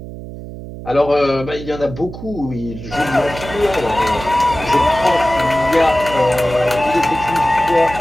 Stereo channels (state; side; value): noise; right; hum, 12 dB below the sound